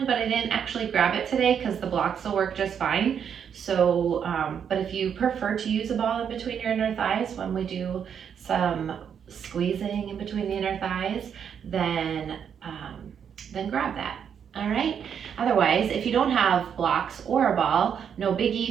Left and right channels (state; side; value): quieter; left; 7.8 dB